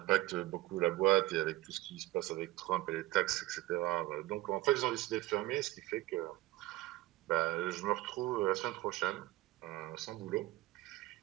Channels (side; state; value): left; quieter; 17.7 dB